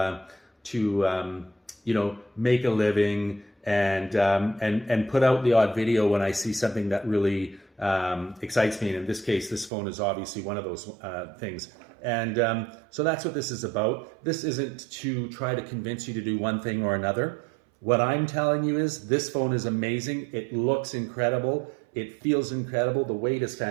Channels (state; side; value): drops out; left; at 9.7 s